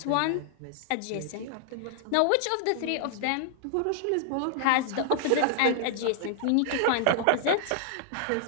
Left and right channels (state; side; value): different; both; correlation 0.00